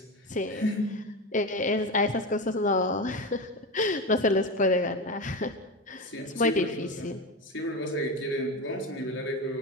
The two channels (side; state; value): both; normal; correlation 0.21